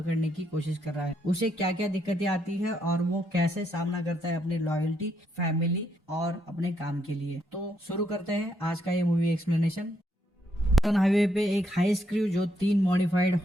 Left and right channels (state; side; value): normal; both; correlation 0.75